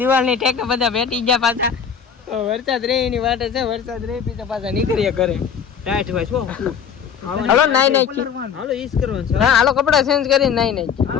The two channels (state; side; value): quieter; right; 7.3 dB